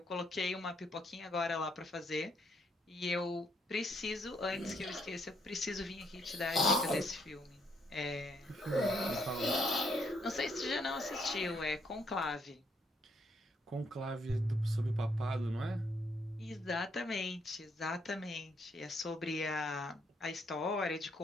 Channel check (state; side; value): normal; both; correlation 0.72